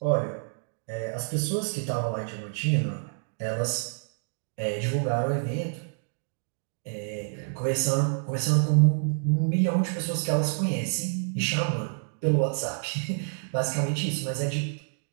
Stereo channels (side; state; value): left; silent; digital silence